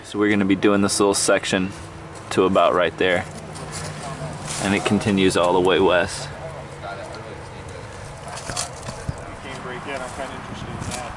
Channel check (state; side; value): identical; both; correlation 1.00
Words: So we're going to be doing this little section to about right there. And it continues all the way west. I'm kind of interested in that.